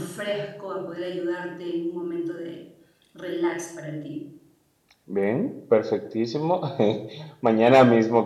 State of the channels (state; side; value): identical; both; correlation 1.00